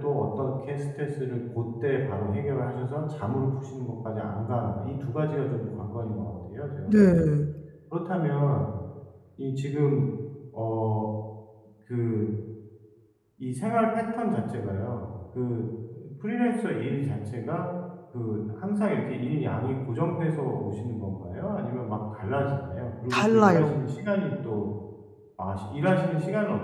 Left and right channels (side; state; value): both; identical; correlation 1.00